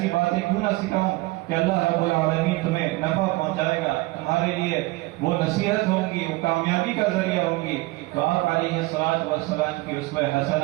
باتیں کیوں نہ سکھاؤں کہ اللہ رب العالمین تمہیں نفع پہنچائے گا، تمہارے لیے وہ نصیحت ہوں گی، وہ کامیابی کا ذریعہ ہوں گی۔ تو آپ علیہ الصلوۃ والسلام کی اسوہ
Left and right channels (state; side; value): quieter; left; 21.1 dB